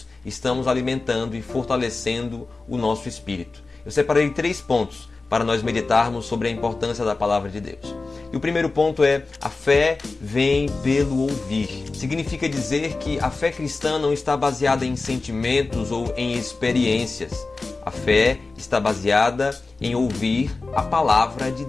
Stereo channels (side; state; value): right; quieter; 3.7 dB